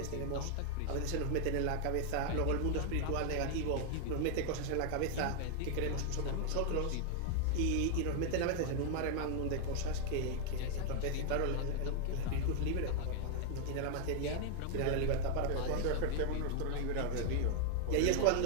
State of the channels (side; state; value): both; different; correlation 0.00